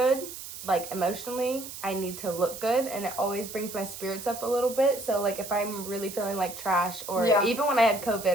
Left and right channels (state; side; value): noise; right; hiss, 11 dB below the sound